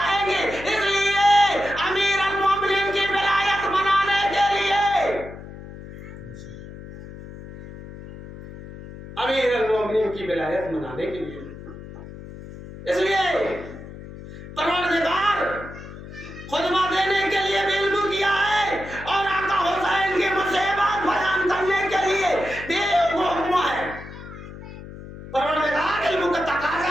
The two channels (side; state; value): left; noise; hum, 14 dB below the sound